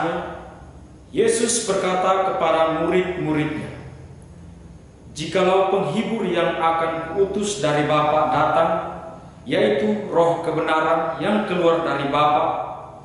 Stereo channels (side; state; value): both; identical; correlation 1.00